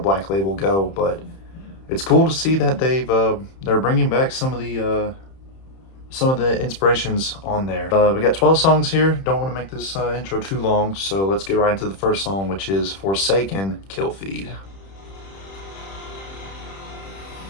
Label go, but it's cool to see that they're bringing back some of the inspirations on there. We got 12 songs here. Don't want to make this intro too long, so let's get right into the first song, which is Forsaken Kill Feed.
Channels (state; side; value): late; right; 31 ms